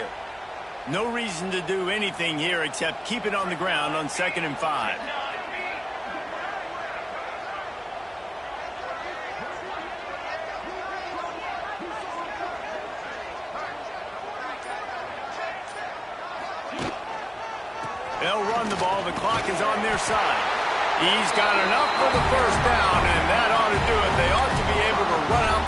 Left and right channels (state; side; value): identical; both; correlation 1.00